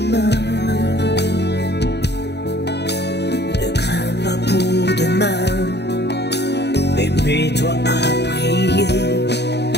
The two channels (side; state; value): right; late; 0.49 ms